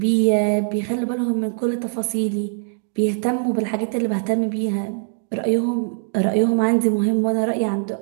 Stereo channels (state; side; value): silent; left; digital silence